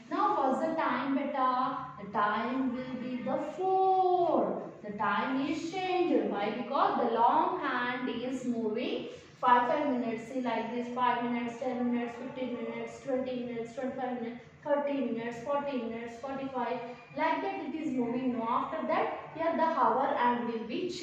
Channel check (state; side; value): identical; both; correlation 1.00